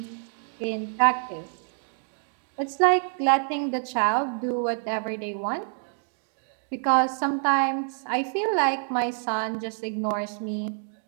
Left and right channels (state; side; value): silent; left; 59 dB below the other